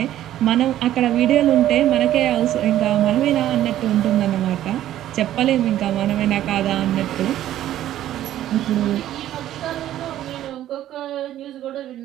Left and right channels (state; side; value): quieter; left; 12.7 dB